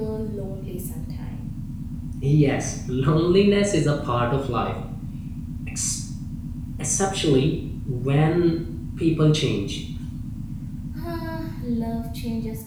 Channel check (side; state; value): both; identical; correlation 1.00